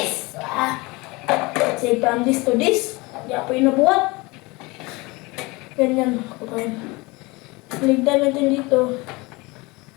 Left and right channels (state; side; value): quieter; right; 24.2 dB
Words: Say from this to this. Di ako inabuhat. Ganyan, kapain. Ligdan natin dito.